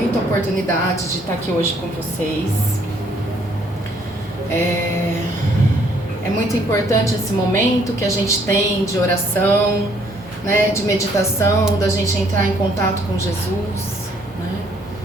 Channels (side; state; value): both; normal; correlation 0.65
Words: a oportunidade de estar aqui hoje com vocês. É muito importante esse momento que a gente tem de oração, né, de meditação, da gente entrar em contato com Jesus, né?